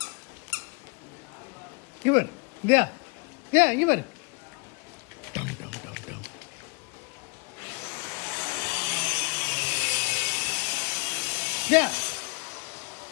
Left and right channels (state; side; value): quieter; right; 31.5 dB